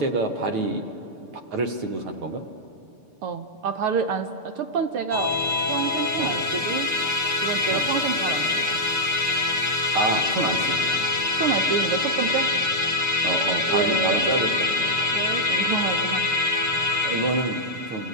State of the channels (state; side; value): late; left; 6.8 ms